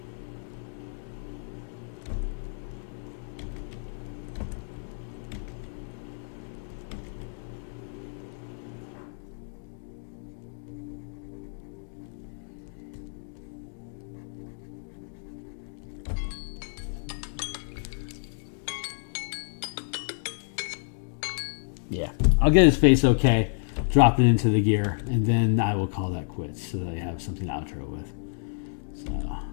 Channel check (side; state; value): right; silent; digital silence